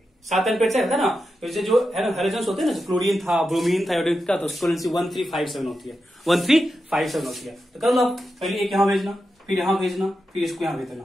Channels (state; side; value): normal; both; correlation 0.89